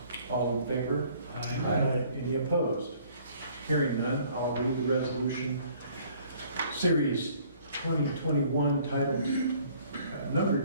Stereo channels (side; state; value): both; inverted; correlation -0.58